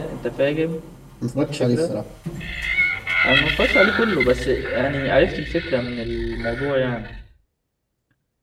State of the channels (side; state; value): both; identical; correlation 1.00